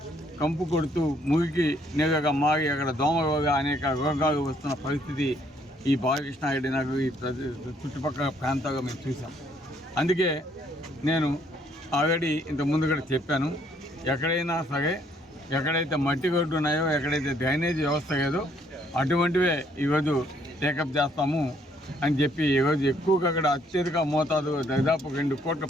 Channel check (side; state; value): both; normal; correlation 0.67